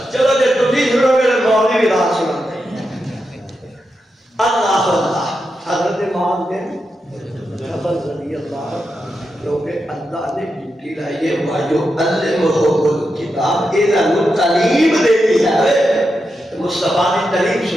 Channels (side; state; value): both; normal; correlation 0.87